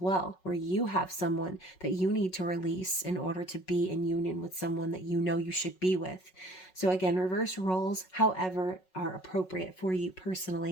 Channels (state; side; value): late; right; 5.4 ms